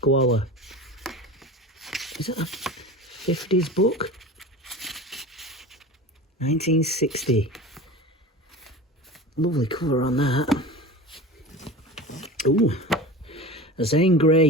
Is it a 50s book? 1960. Lovely cover on that. Ooh. Zane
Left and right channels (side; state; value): both; normal; correlation 0.33